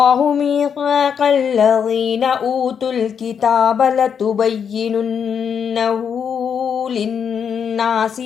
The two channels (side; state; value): right; quieter; 7.4 dB